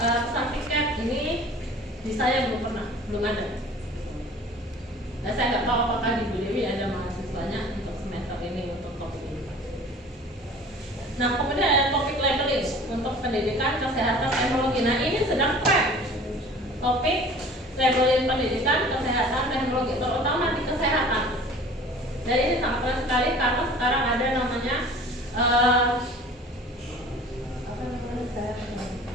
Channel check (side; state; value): both; normal; correlation 0.45